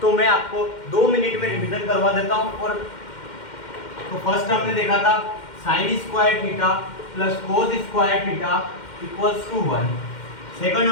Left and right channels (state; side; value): late; right; 2.1 ms